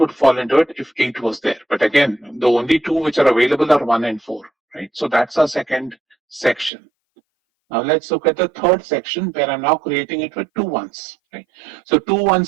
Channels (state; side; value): drops out; left; at 6.7 s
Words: fall into it if 8 was there. But again, the only 2 which are available are 1 and 4, right? So that's our second section. Now let's look at the third section where I'm now creating it with 2 ones, right? So 2